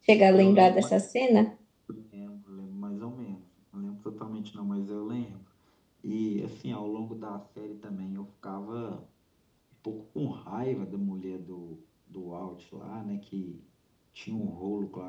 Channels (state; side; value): identical; both; correlation 1.00